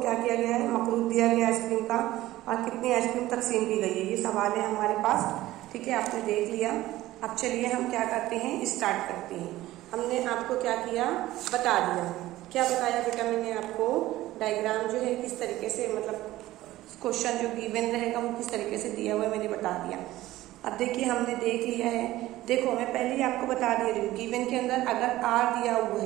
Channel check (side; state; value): left; quieter; 16.1 dB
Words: क्या किया गया है, मकरूद दिया गया आइसक्रीम का, और कितनी आइसक्रीम तकसीम की गई है, ये सवाल है हमारे पास। ठीक है, आपने देख लिया। अब चलिए हम क्या करते हैं, स्टार्ट करते हैं। हमने आपको क्या किया, बता दिया। क्या बताया बेटा मैंने आपको, डायग्राम जो है किस तरीके से, मतलब क्वेश्चन जो गिवन रहेगा वो किस तरीके से दिया हुआ है मैंने बता दिया। अब देखिए हमने देख लिया है। देखो मैं पहले ही आपको बता दे रही हूँ, गिवन के अंदर अगर R दिया हुआ